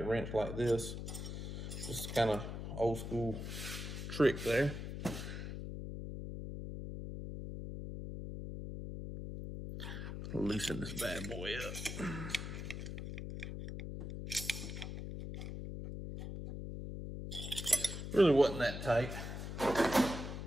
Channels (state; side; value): noise; left; hum, 6 dB below the sound